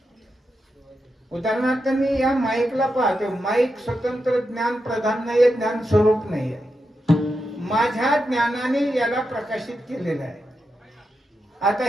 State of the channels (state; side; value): normal; both; correlation 0.87